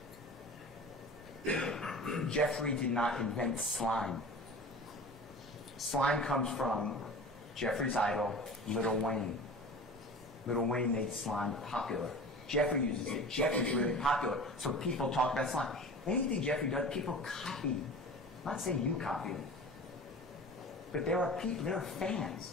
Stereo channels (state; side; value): normal; both; correlation 0.37